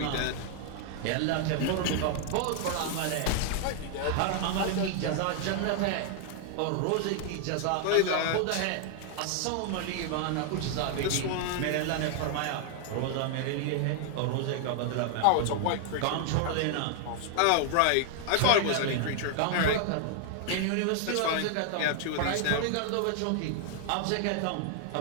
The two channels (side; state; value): both; different; correlation 0.00